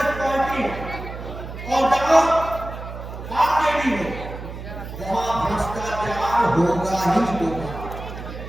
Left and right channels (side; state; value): right; noise; hum, 10 dB below the sound